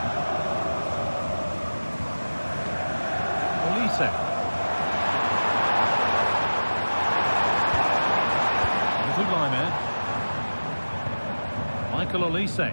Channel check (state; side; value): inverted; both; correlation -1.00